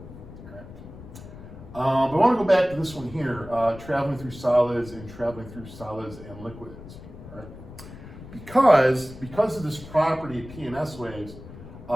But I want to go back to this one here, traveling through solids and traveling through solids and liquids. All right? Because of this property of P and S waves,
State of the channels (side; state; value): left; noise; rumble, 15 dB below the sound